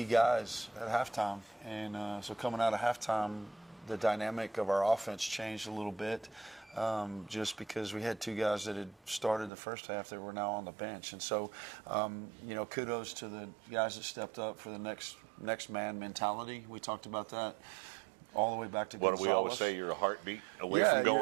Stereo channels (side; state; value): left; drops out; at 9.5 s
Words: guys at halftime. And so coming out of halftime, the dynamic of our offense changed a little bit. Just because we had 2 guys that had started the first half that were now on the bench. And so, you know, kudos to the guys that stepped up for the next man mentality. We talked about that all the way back to What do we always say? You're a heartbeat away from